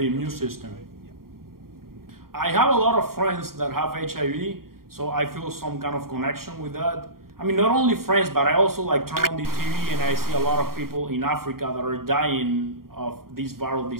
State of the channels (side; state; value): left; late; 0.93 ms